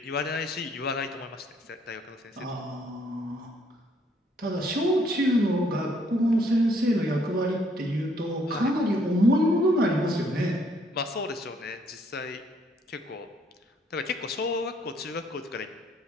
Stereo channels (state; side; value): normal; both; correlation 0.67